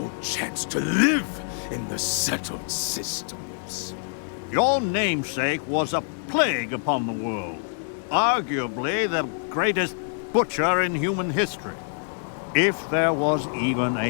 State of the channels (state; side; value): silent; right; digital silence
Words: chance to live in the settled systems. Your namesake was a plague upon the world. Arguably the greatest butcher in human history. If there was even